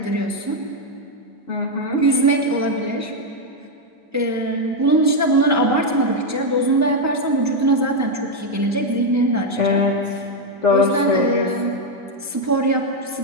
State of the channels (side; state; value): both; normal; correlation 0.01